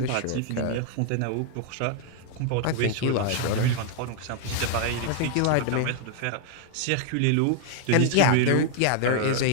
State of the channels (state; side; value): different; both; correlation 0.00